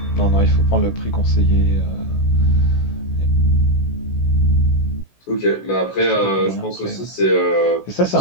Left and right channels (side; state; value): right; late; 16 ms